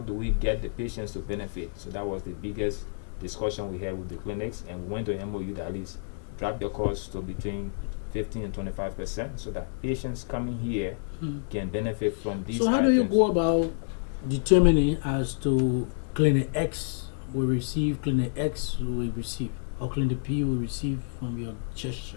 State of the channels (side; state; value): right; silent; digital silence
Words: do we get the patients to benefit? So that was the biggest discussion we had with the clinics, and we went to MOU that at least drop their costs to between 15 and 25%, so that patients coming here can benefit from these So how items. do you go about determining as to clinic X will receive, clinic X will receive, or clinic P will receive from your